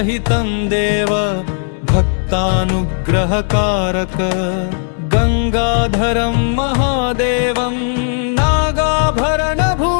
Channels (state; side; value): silent; right; digital silence